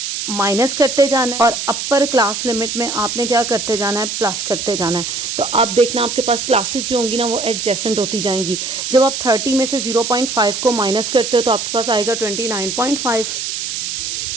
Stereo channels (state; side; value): noise; right; hiss, 4 dB below the sound